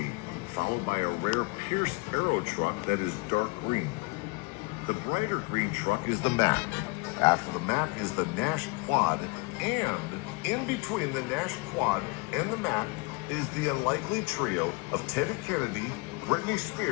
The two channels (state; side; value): quieter; right; 27.1 dB